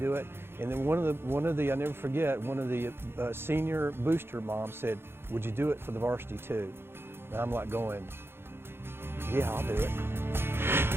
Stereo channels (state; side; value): late; left; 0.11 ms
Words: it. And then one of the, I never forget, one of the senior booster moms said, would you do it for the varsity too? And I'm like going, yeah, I'll do it.